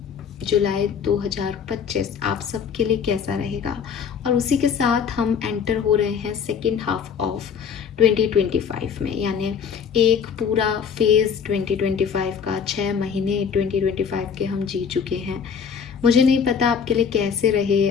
जुलाई 2025 आप सबके लिए कैसा रहेगा, और उसी के साथ हम एंटर हो रहे हैं सेकेंड हाफ ऑफ 2025 में, यानी एक पूरा फेज़ 2025 का, 6 महीने 2025 के हम जी चुके हैं। मुझे नहीं पता आपके लिए कैसे रहे,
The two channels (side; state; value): right; quieter; 6.8 dB